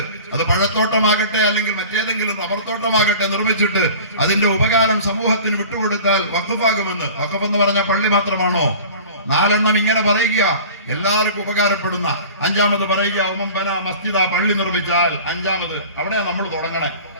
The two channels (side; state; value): both; inverted; correlation -0.41